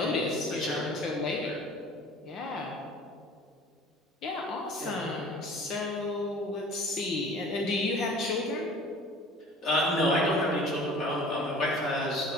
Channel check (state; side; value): normal; both; correlation 0.46